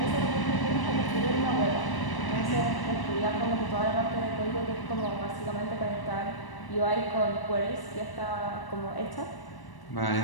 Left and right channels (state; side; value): late; right; 1.0 ms